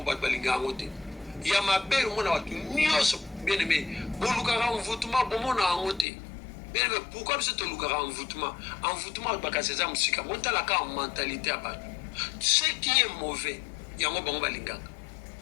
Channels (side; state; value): right; drops out; at 6.1 s